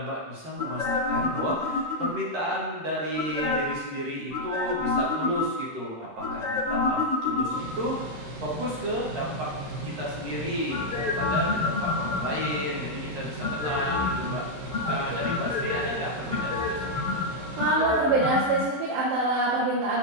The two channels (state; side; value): late; left; 13 ms